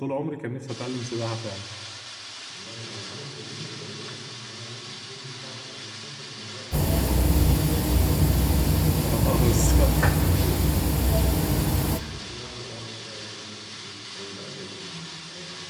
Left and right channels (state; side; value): identical; both; correlation 1.00